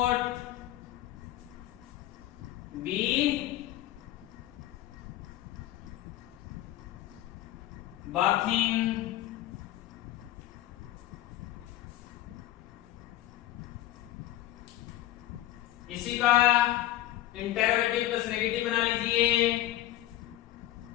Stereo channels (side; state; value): right; quieter; 14.3 dB